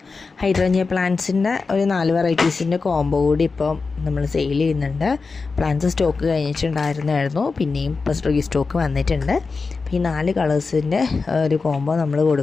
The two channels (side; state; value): right; quieter; 4.4 dB